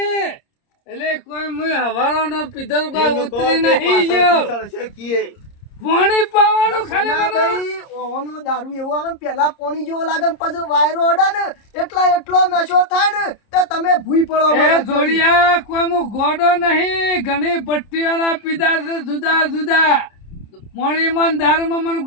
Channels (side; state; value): right; late; 30 ms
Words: એટલે કોઈ મુય હવારો નો પીધો કોઈ ઉતરી નહીં ગયો સળસે કીએ. પાણી પાવાનું ખાલી મને સનાભાઈ, ઓનો દારૂ એવો આવે ને પેલા પોણી જેવો લાગે ને પછી વાયરો અડે ને એટલો નશો થાય ને તો તમે ભૂઈ પડો એ મને. જોડિયા કોઈ હું ગોડો નહીં ઘણી ભટ્ટીઓના પીધા છે જુદા જુદા પાણીમાં ને દારૂમાં મને